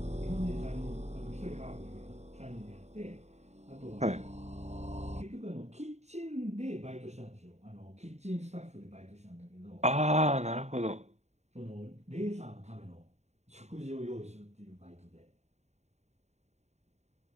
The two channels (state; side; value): late; left; 0.32 ms